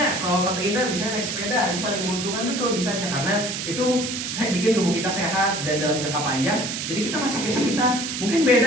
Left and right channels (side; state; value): right; noise; hiss, 4 dB below the sound